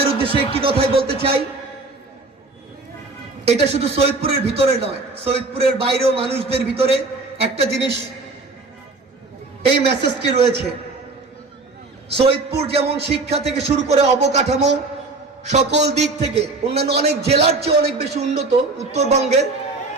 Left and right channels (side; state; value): left; quieter; 3.5 dB